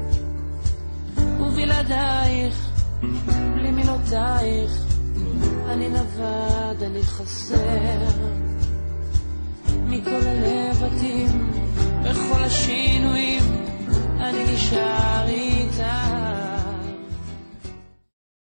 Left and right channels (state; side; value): inverted; both; correlation -1.00